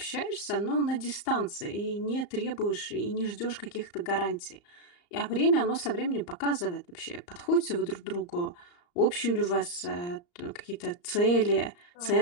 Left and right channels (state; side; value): late; right; 34 ms